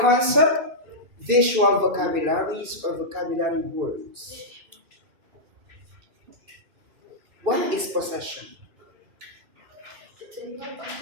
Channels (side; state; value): left; late; 2.6 ms